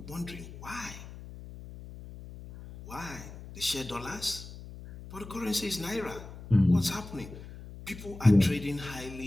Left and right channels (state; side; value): noise; left; hum, 14 dB below the sound